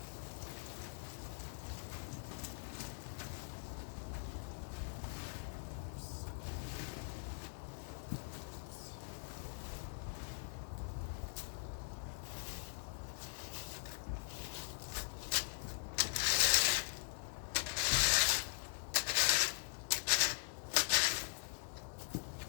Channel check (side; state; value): right; silent; digital silence